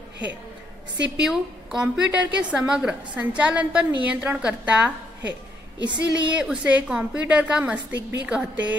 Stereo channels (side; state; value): both; normal; correlation 0.74